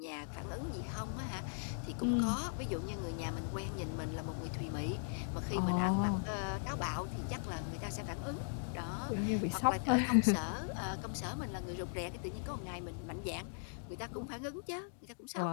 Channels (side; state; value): right; silent; digital silence